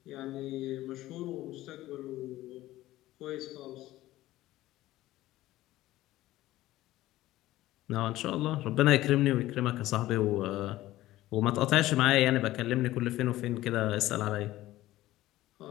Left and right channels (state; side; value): quieter; right; 16.0 dB